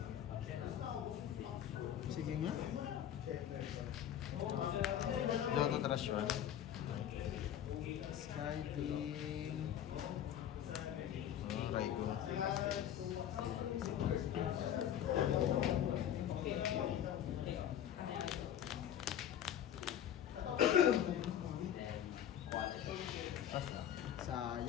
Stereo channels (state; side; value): quieter; right; 10.3 dB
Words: Sige nga. Logo trash one. Skyding. Raigo.